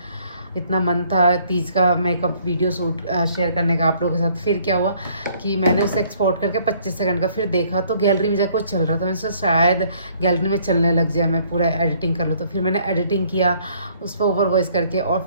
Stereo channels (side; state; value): both; inverted; correlation -0.62